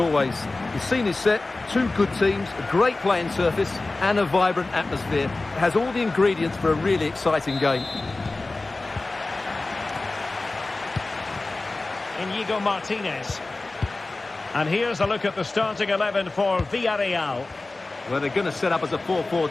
The scene is set, two good teams, a great playing surface, and a vibrant atmosphere. It has all the ingredients for a really exciting game. Inigo Martinez. And here's a look at the starting 11 for Villarreal. Well, they're going to set up as a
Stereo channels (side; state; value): right; quieter; 3.2 dB